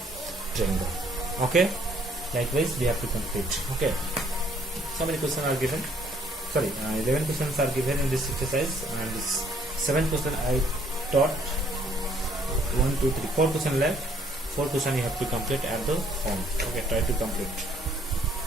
triangle. Okay, likewise we have to complete. Okay, so many questions are given, 11 questions are given in this exercise, and this 7th question I taught. 1 2 3 4 questions left. 4 questions you have to complete at the home. Okay, try to complete.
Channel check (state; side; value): normal; both; correlation 0.63